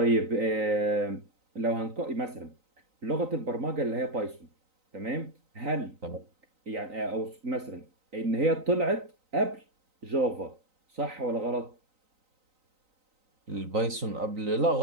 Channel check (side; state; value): left; late; 3.9 ms